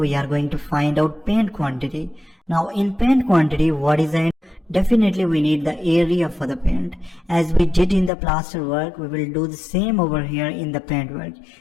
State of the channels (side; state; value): right; drops out; at 8.1 s